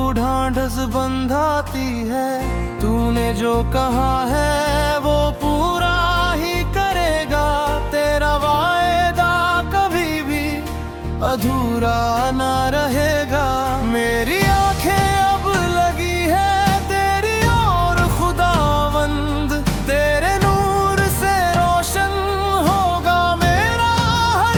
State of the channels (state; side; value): identical; both; correlation 1.00